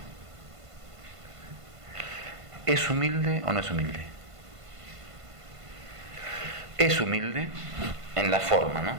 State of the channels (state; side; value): late; left; 1.5 ms